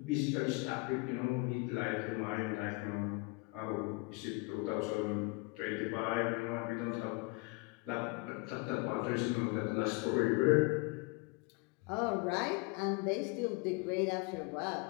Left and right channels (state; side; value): quieter; right; 26.4 dB